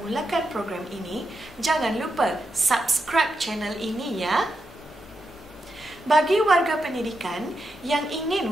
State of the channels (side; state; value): both; normal; correlation 0.86